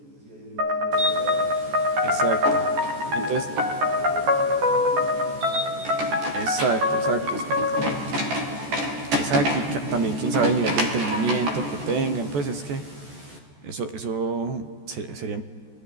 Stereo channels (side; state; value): left; late; 14 ms